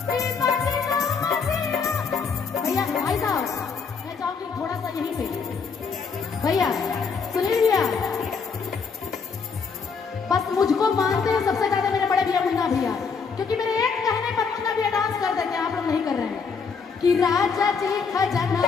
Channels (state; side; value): quieter; right; 5.4 dB